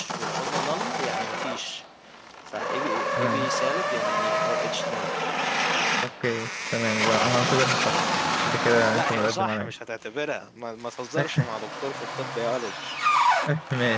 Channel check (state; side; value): identical; both; correlation 1.00